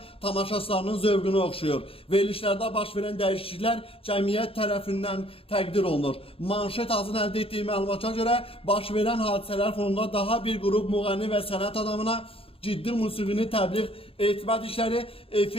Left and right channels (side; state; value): right; late; 0.27 ms